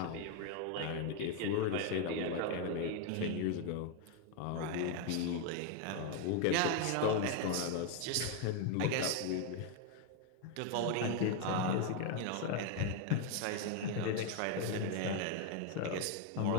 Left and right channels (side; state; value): both; different; correlation 0.01